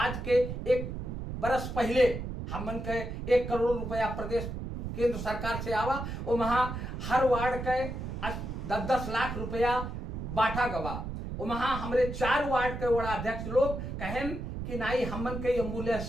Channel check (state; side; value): noise; right; rumble, 6 dB below the sound